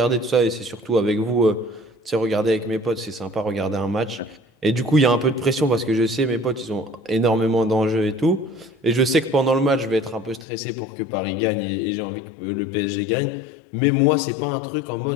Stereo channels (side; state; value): right; drops out; at 10.5 s